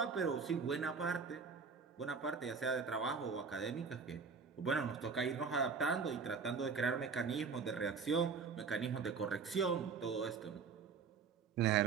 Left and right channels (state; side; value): quieter; left; 5.4 dB